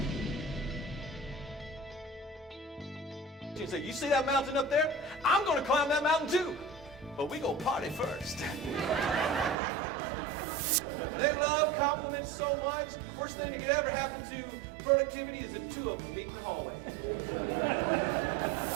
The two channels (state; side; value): drops out; left; at 9.6 s